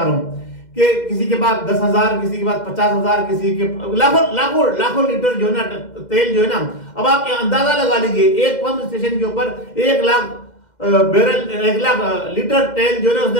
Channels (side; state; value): right; late; 2.1 ms